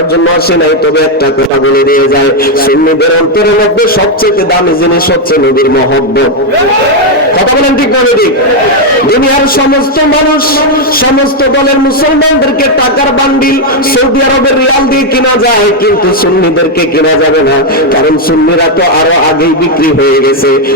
জন্য আসি নাই, তবে একটা কথা বলে দিয়ে যায়, সুন্নিদের অন্তরের মধ্যে সবচেয়ে দামি জিনিস হচ্ছে নবীর মহব্বত। কথা বলেন ঠিক না ঠিক? দুনিয়ার সমস্ত মানুষ, সমস্ত দলের মুসলমানদেরকে টাকার বান্ডিল সৌদি আরবের রিয়াল দিয়ে কিনা যায়, কিন্তু সুন্নিদেরকে কিনা যাবে না, কারণ সুন্নিরা তো আরো আগেই বিক্রি হয়ে গেছে।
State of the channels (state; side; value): normal; both; correlation 0.02